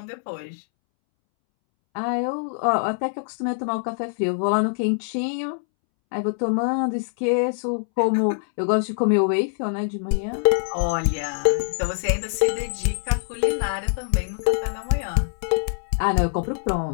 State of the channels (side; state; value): right; silent; 63 dB below the other